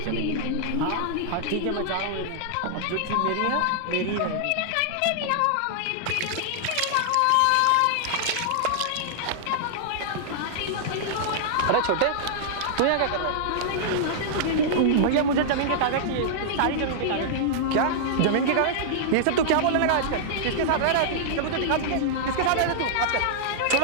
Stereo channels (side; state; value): both; different; correlation -0.01